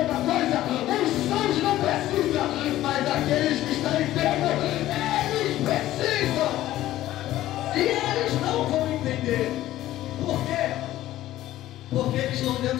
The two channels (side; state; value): right; quieter; 14.5 dB